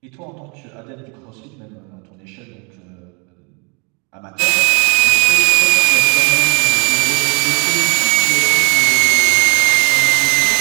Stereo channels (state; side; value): quieter; left; 33.0 dB